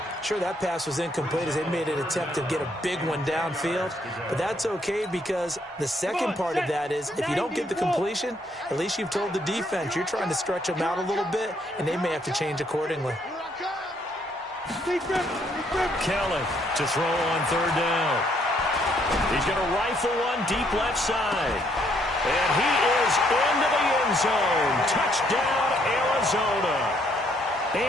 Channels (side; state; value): both; normal; correlation 0.70